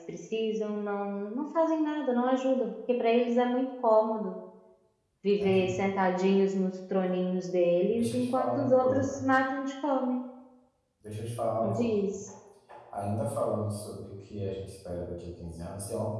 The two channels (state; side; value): identical; both; correlation 1.00